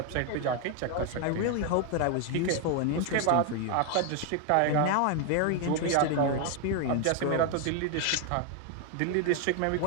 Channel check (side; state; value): both; different; correlation 0.01